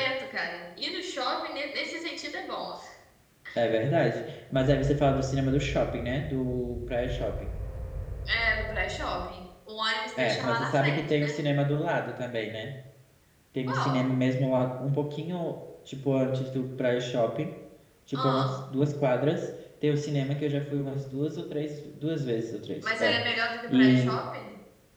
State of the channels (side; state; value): both; identical; correlation 1.00